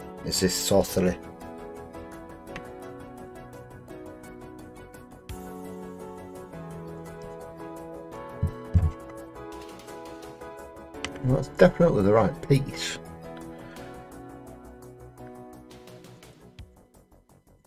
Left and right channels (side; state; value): both; identical; correlation 1.00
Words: is this sorcery? Well, that's definitely the right piece.